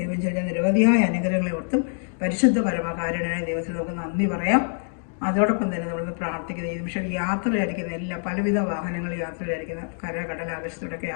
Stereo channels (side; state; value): right; silent; 62 dB below the other